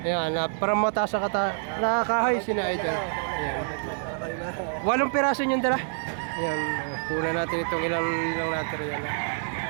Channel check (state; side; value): silent; left; 60 dB below the other